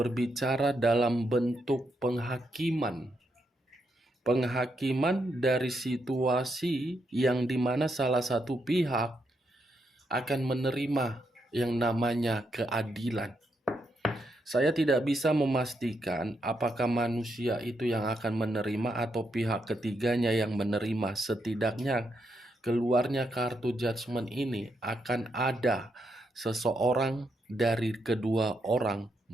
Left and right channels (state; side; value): normal; both; correlation 0.80